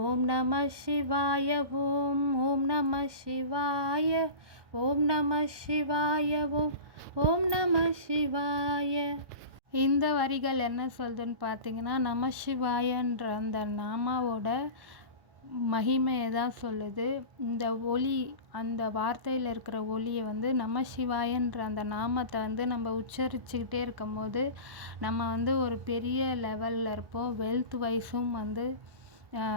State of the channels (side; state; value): left; late; 1.1 ms